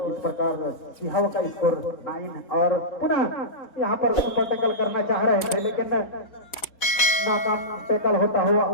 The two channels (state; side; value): late; right; 4.1 ms